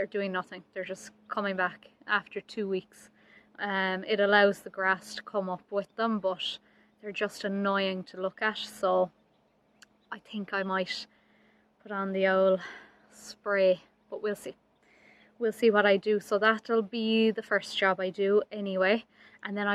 doing nothing. They're just coming back after 2 weeks. It allows the grass to come up with them, but they're just annoying to look at. So I think I might put on the old spray, but we'll see. We'll see what I do. So that'll be the first job I do anyway. And then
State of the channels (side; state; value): both; identical; correlation 1.00